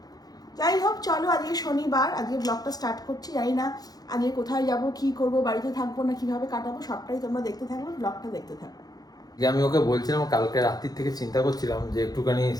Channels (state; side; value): late; right; 0.19 ms